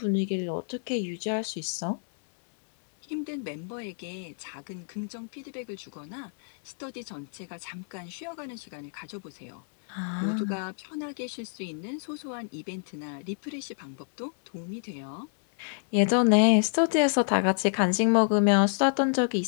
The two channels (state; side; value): silent; right; 59 dB below the other